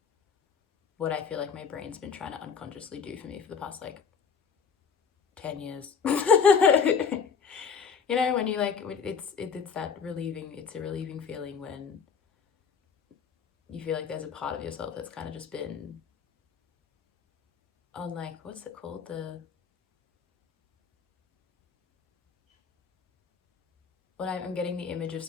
what I feel like my brain's been trying to unconsciously do for me for the past, like, 10 years. You know, when you, like, it's that relieving, it's a relieving feeling when you feel like there's a part of yourself that's kind of just been on, like, what's it called? When I'm getting the image of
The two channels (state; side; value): quieter; right; 6.2 dB